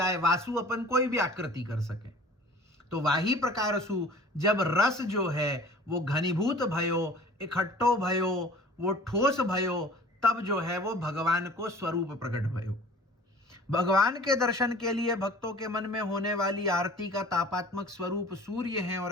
वासु अपन कोई भी आकृति कर सके। तो वही प्रकार सु जब रस जो है वो घनीभूत भयो, इकट्ठो भयो, वो ठोस भयो, तब जो है वो भगवान को स्वरूप प्रकट भयो। भगवान के दर्शन के लिए भक्तों के मन में होने वाली आरती का तापात्मक स्वरूप सूर्य है और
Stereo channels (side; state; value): both; normal; correlation 0.46